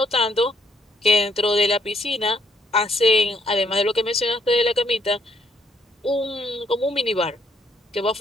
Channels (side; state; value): both; normal; correlation 0.70